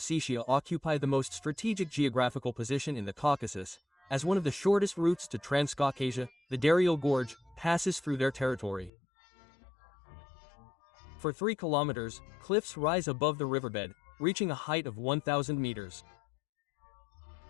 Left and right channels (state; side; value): drops out; right; at 8.9 s